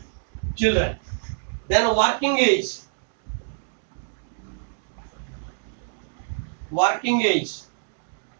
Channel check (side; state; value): left; silent; digital silence